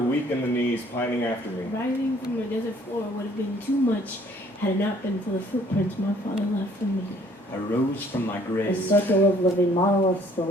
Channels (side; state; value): both; normal; correlation 0.60